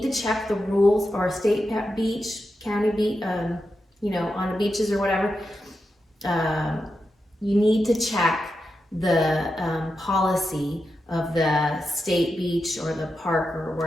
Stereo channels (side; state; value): both; normal; correlation 0.88